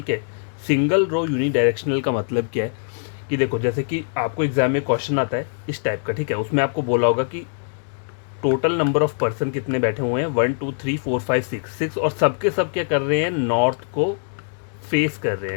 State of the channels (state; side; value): silent; right; digital silence